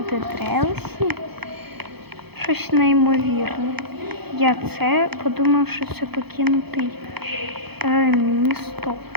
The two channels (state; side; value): late; left; 0.97 ms